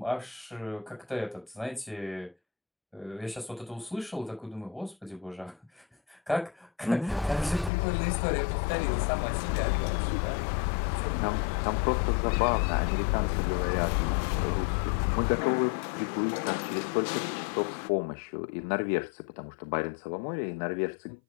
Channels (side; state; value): right; drops out; at 7.7 s